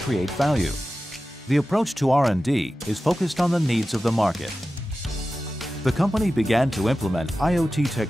value. The approach to R&D is focused on the needs of the market. The company began to implement IoT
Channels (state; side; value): normal; both; correlation 0.94